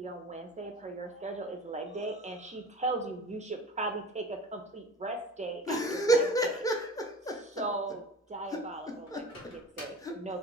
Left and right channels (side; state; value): both; normal; correlation 0.39